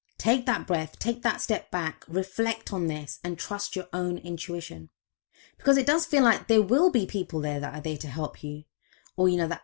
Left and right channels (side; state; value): right; silent; digital silence